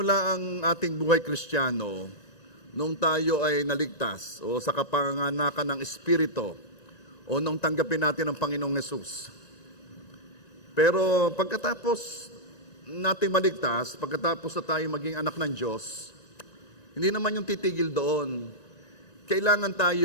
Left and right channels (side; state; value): right; late; 1.9 ms